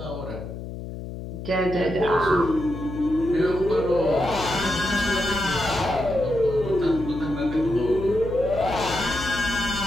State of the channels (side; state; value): left; noise; hum, 9 dB below the sound